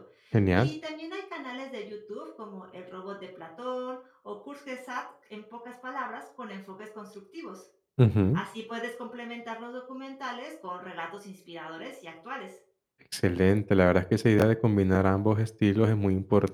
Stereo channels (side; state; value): both; identical; correlation 1.00